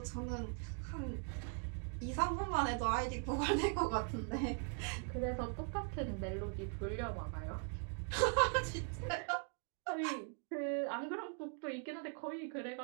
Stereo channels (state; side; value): quieter; left; 39.3 dB